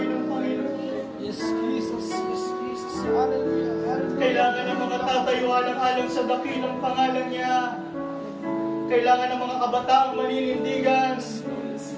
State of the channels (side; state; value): both; identical; correlation 1.00